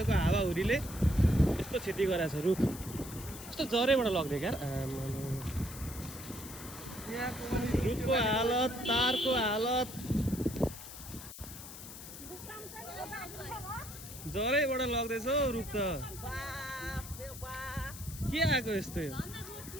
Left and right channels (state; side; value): noise; left; hiss, 13 dB below the sound